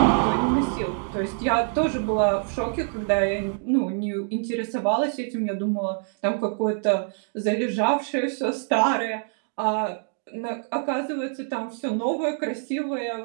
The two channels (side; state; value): left; silent; digital silence